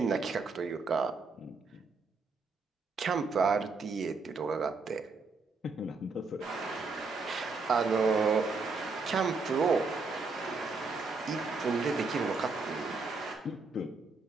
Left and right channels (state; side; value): quieter; left; 4.2 dB